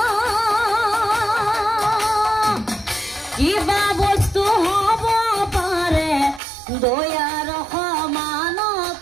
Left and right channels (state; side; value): drops out; left; at 6.4 s